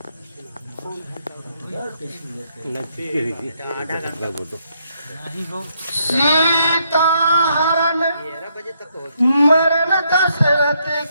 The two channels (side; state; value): both; inverted; correlation -0.75